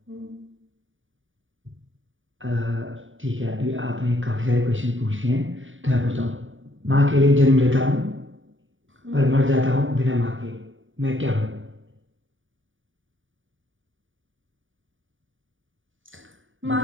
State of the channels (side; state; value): left; late; 0.57 ms